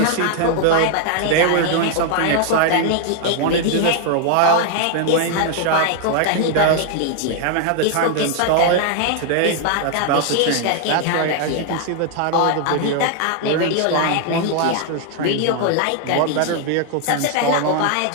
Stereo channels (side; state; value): both; different; correlation 0.00